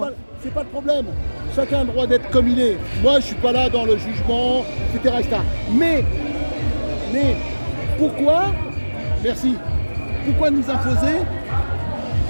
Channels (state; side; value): inverted; both; correlation -1.00